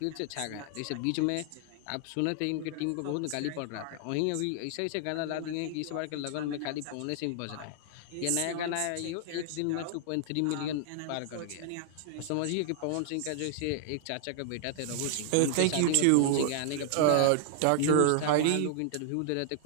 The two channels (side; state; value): both; different; correlation 0.00